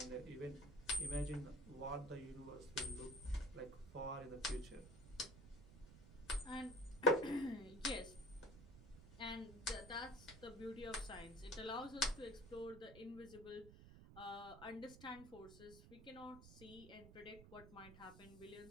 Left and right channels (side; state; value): right; noise; rumble, 16 dB below the sound